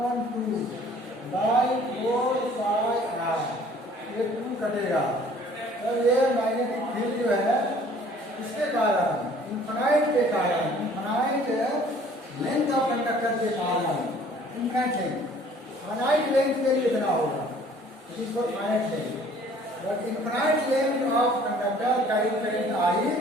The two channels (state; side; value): normal; both; correlation 0.54